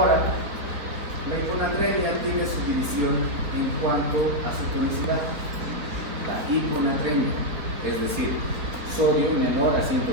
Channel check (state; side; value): late; left; 3.7 ms